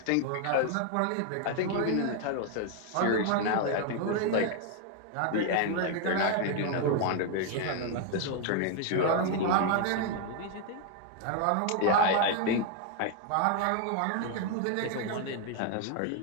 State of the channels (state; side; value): different; both; correlation 0.00